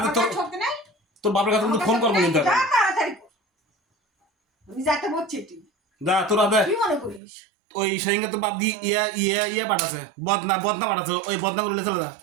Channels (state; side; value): drops out; left; at 7.2 s